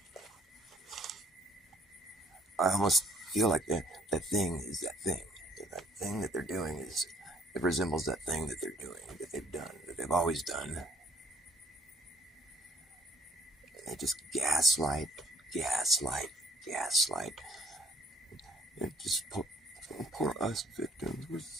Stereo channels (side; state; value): both; normal; correlation 0.61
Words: I almost feel like that thing is that thing. That thing that they're doing it resembles that thing that they're doing, that they've done, that they've always done. They just gaslight. And just poor us victims. We're